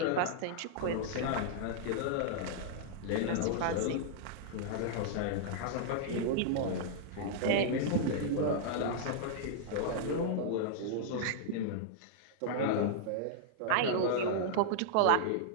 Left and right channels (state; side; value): different; both; correlation -0.01